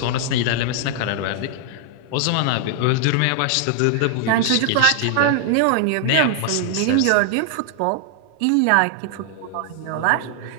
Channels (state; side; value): different; both; correlation 0.00